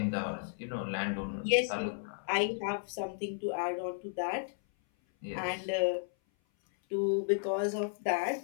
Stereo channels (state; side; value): silent; right; 55 dB below the other